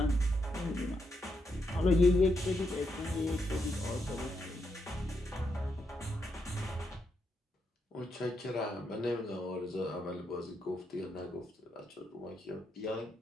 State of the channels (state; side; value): normal; both; correlation 0.81